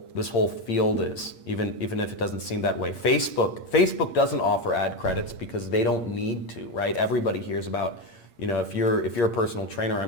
field is, even if it doesn't seem that way. Facebook doesn't offer ad credits because they don't need to, right? Everybody hears about, if you're a personal trainer, I'm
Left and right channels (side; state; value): right; late; 8.6 ms